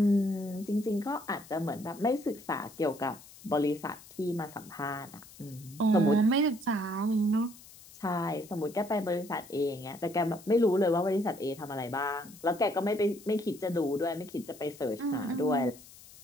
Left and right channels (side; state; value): left; noise; hiss, 20 dB below the sound